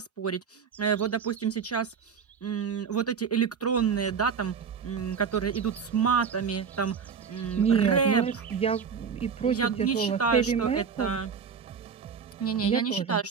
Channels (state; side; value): quieter; left; 6.3 dB